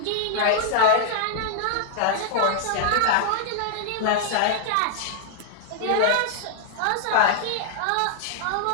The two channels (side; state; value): both; different; correlation -0.01